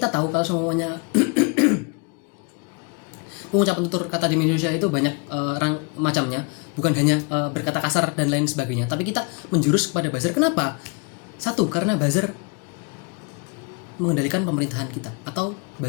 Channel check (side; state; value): right; quieter; 33.4 dB